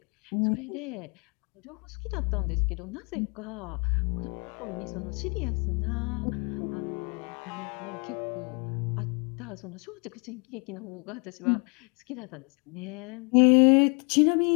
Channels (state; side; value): quieter; right; 34.3 dB